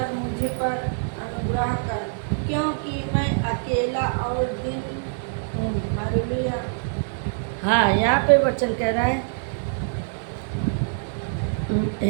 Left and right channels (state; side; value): silent; left; digital silence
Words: मुझ पर अनुग्रह कर, क्योंकि मैं अकेला और दिन हूँ। हालेलुया। हाँ, यहाँ पे वचन कह रहा है,